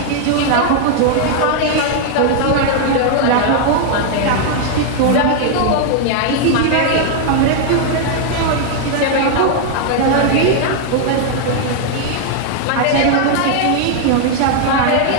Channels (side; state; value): both; different; correlation 0.00